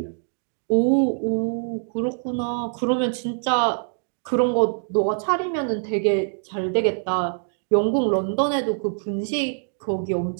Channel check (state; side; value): silent; left; digital silence